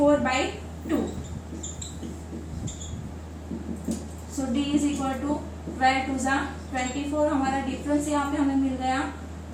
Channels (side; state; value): both; identical; correlation 1.00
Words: So d is equal to 12 2 जा 24, हमारा डिफरेंस यहाँ पे हमें मिल गया